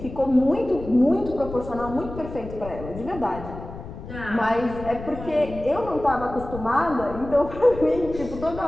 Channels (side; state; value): left; noise; rumble, 12 dB below the sound